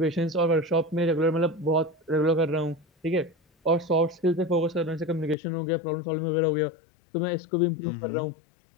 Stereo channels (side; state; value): right; drops out; at 5.4 s